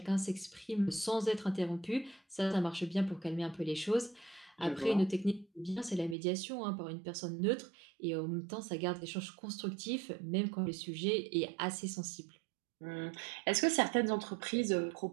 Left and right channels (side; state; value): left; drops out; at 6.2 s